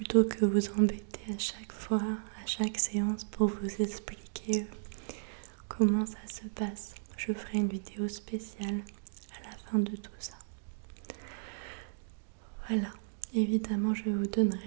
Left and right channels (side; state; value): left; silent; digital silence